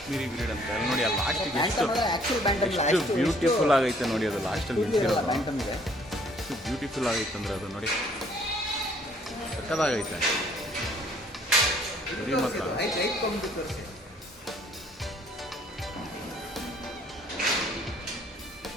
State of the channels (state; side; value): normal; both; correlation 0.61